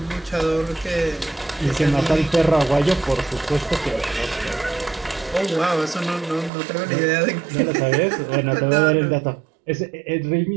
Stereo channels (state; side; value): drops out; left; at 6.5 s